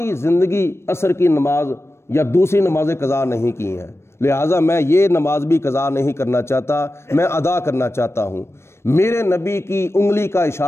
زندگی عصر کی نماز یا دوسری نمازیں قضا نہیں کی ہیں، لہٰذا میں یہ نماز بھی قضا نہیں کرنا چاہتا، میں ادا کرنا چاہتا ہوں۔ میرے نبی کی انگلی کا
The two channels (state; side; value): late; right; 0.13 ms